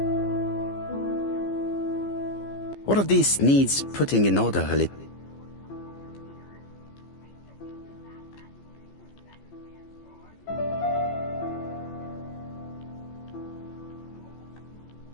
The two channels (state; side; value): late; right; 15 ms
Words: What of this needs putting in order a little?